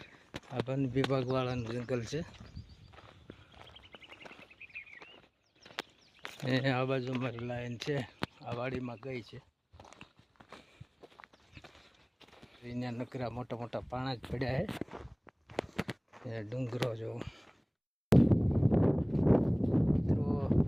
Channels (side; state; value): both; identical; correlation 1.00